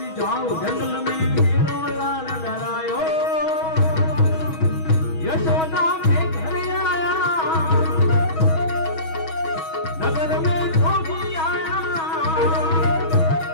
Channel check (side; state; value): right; late; 6.3 ms